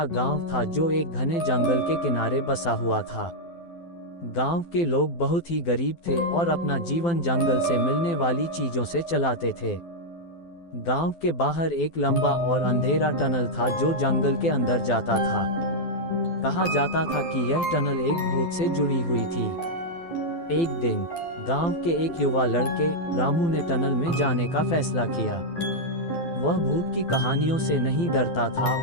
गांव था जो एक घने जंगल के किनारे बसा हुआ था। गांव के लोग बहुत ही गरीब थे और अपना जीवन जंगल से मिलने वाली चीजों से चलाते थे। गांव के बाहर एक लंबा और अंधेरा टनल था जो जंगल के अंदर जाता था। कहा जाता था कि यह टनल एक भूत से जुड़ी हुई थी। एक दिन गांव के एक युवा लड़के रामू ने टनल में जाने का फैसला किया। वह भूत की कहानियों से नहीं डरता था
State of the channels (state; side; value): late; right; 12 ms